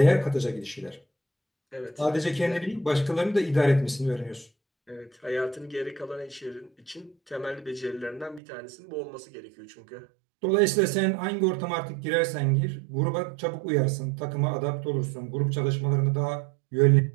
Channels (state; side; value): drops out; left; at 8.4 s